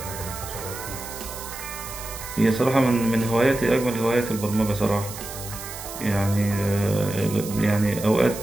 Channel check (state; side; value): noise; right; hiss, 11 dB below the sound